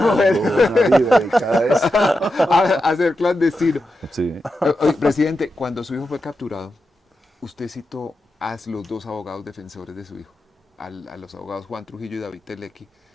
vida dedicada a eso. A ser clandestino. Sí. Oye, presidente, cuando su hijo fue capturado, usted citó a los dos abogados defensores de su hijo, a los abogados Juan Trujillo y David Telequi.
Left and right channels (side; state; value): both; normal; correlation 0.89